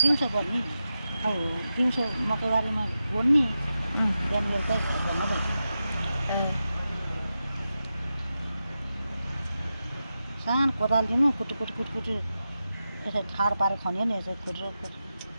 दिउँसो गर्ने अब दिउँसो मकैबारीमा गोड्ने बिहान बेलुकै घर धन्दा सानो कोदाल लिनु कुटु यसरी ठाड पारेर खन्यो नि यसरी खुट्रो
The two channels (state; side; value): inverted; both; correlation -0.91